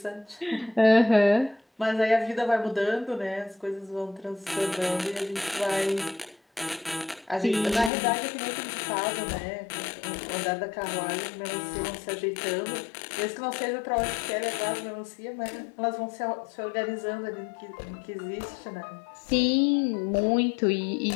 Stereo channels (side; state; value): right; drops out; at 7.9 s